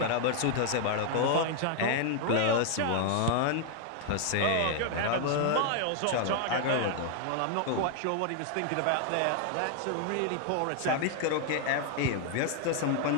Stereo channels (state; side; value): different; both; correlation 0.00